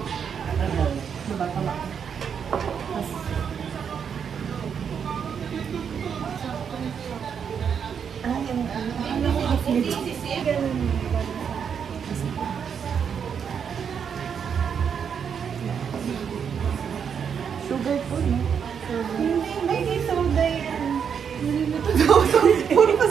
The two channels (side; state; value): left; quieter; 7.3 dB